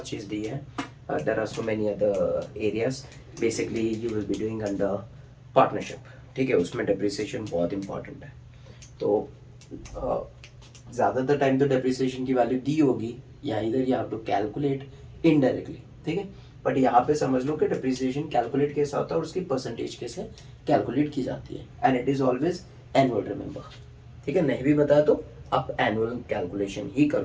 चीज़ दी है, there are so many other areas basically you will be doing under partnership. ठीक है, उसमें डेप्रिसिएशन बहुत इंपॉर्टेंट है। तो ज़्यादातर टाइम तो डेप्रिसिएशन की वैल्यू दी होगी, या इधर you have to calculate indirectly. ठीक है, बट यहाँ पे समझ लो कि डेप्रिसिएशन कैलकुलेट कैसा होता है और उसकी परसेंटेज कैसे कैलकुलेट की जाती है, and it is always annual, remember. ठीक है, नहीं भी बताया तो आप एनुअल कैलकुलेशन ही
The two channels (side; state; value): both; identical; correlation 1.00